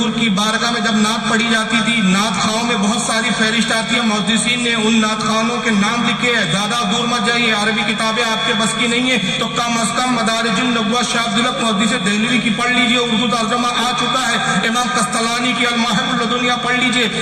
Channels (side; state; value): both; identical; correlation 1.00